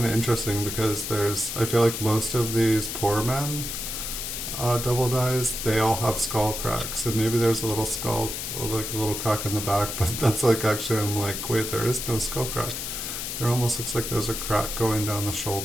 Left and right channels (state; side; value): noise; left; hiss, 5 dB below the sound